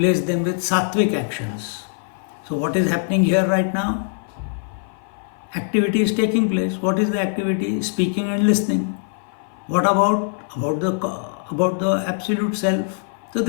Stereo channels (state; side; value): silent; right; 55 dB below the other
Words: them with sattvic actions. So what is happening here right now? Activity is taking place. What is the activity? Speaking and listening. What about the absolute self? So